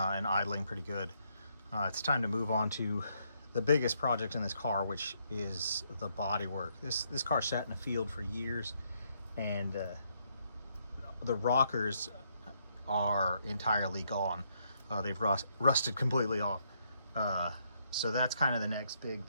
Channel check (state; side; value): inverted; both; correlation -0.74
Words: idling pretty good, it's time to move on to the biggest project in this car, which is the body work. This car sat in the field for years, and the rockers are entirely gone. They've rusted completely off. So that's kind of the next big